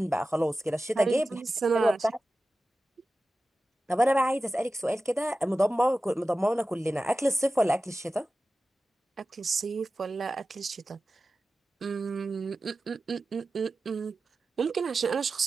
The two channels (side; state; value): both; normal; correlation 0.94